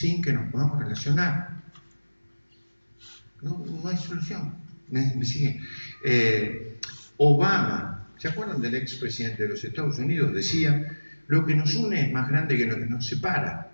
que nos podamos relacionar. No hay solución. ¿Me siguen? Obama, ¿se acuerdan del expresidente de los Estados Unidos? Decía, lo que nos une es más grande que lo que nos separa.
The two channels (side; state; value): both; inverted; correlation -1.00